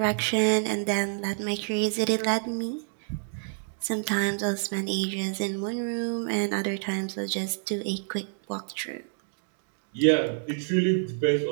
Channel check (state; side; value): silent; left; digital silence